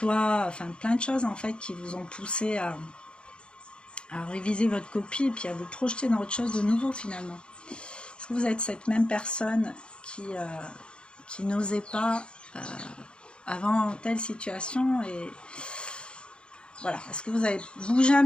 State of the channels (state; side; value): late; right; 0.054 ms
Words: enfin plein de choses en fait qui vous ont poussé à réviser votre copie et puis à vous projeter dans autre chose de nouveau finalement. Est-ce que vous êtes cette même personne qui n'osait pas avant telle situation et voilà. Est-ce que vous avez bougé